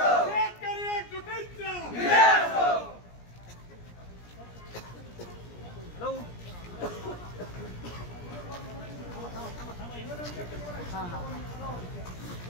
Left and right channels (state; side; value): late; right; 17 ms